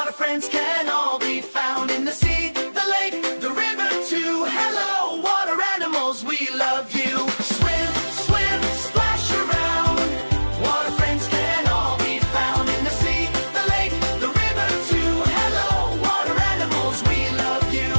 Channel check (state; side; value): inverted; both; correlation -1.00